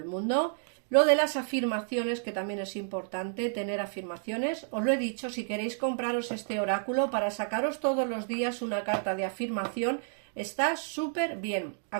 mundo. Lo de las afirmaciones, que también es importante tener afirmaciones. Os lo he dicho, si queréis compraros este oráculo para sacaros todos los días una carta de afirmación, está súper bien.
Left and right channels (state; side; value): silent; left; digital silence